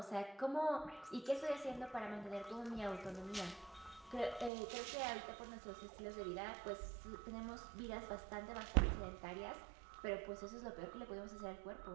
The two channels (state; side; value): drops out; left; at 4.5 s